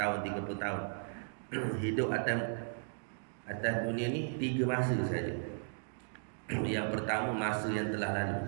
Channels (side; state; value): left; silent; digital silence